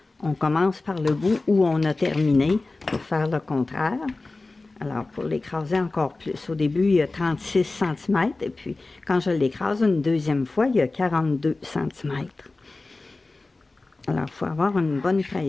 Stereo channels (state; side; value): quieter; right; 3.3 dB